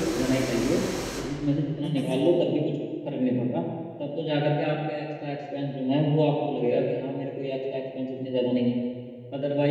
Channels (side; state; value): both; identical; correlation 1.00